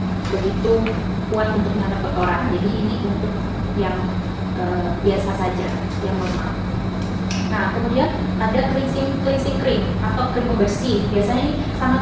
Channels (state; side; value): identical; both; correlation 1.00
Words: begitu kuat untuk menangkap kotoran. Jadi ini untuk yang biasa saja, yang normal. Nah, kemudian ada cleansing cream atau krim pembersih. Biasanya ini sangat